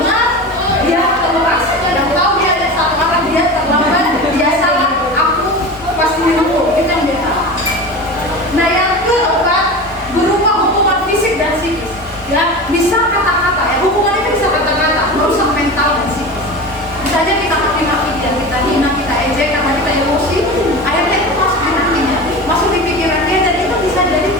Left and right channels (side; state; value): both; normal; correlation 0.30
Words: benar, dia keluar. Yang tahu dia ada satu arah, dia terlambat, dia salah, aku pasti dihukum. Itu yang dia tahu. Nah, yang keempat berupa hukuman fisik dan psikis. Ya, bisa kata-kata ya. Hukuman itu bisa kata-kata, merusak mental dan psikis. Misalnya kita maki-maki dia, kita hina, kita ejek karena kita emosi, akhirnya itu masuk di hatinya, masuk di pikiran dia, dan itu bisa jadi